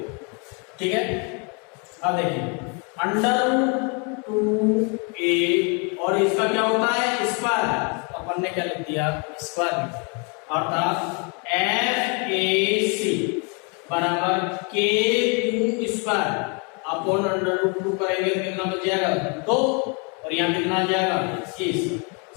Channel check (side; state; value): right; quieter; 34.7 dB